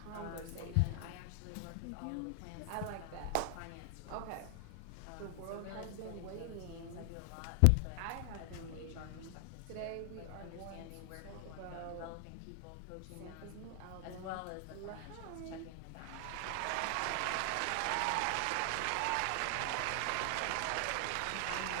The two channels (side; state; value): both; different; correlation 0.00